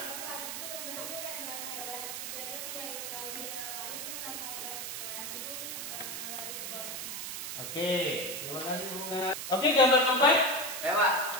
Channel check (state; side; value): noise; right; hiss, 5 dB below the sound